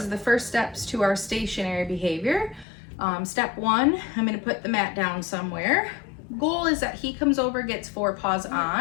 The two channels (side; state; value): right; drops out; at 2.7 s